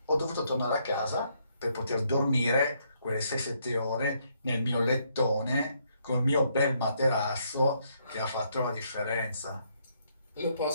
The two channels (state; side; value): inverted; both; correlation -0.73